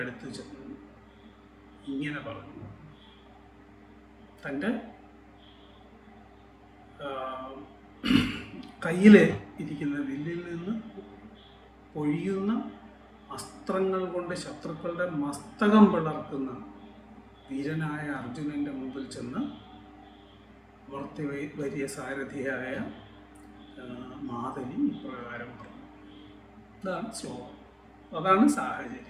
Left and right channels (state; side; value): identical; both; correlation 1.00